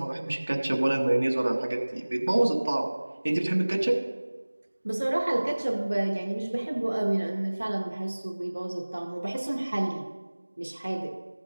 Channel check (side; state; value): both; inverted; correlation -1.00